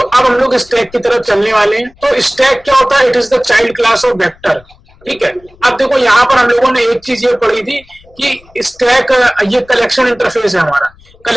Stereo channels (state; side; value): noise; left; rumble, 28 dB below the sound